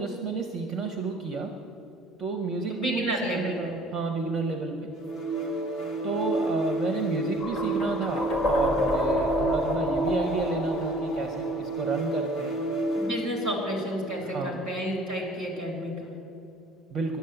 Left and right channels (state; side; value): normal; both; correlation 0.53